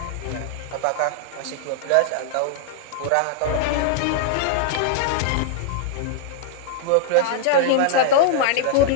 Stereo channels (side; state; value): both; different; correlation -0.01